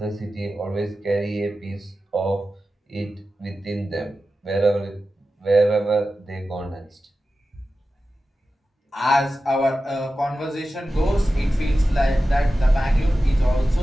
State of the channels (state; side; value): normal; both; correlation 0.93